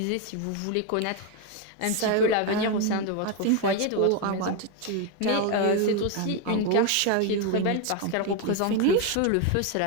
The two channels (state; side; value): different; both; correlation 0.01